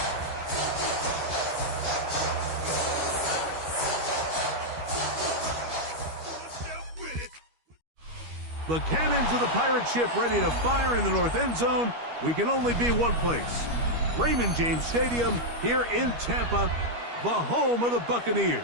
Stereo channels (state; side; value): late; left; 13 ms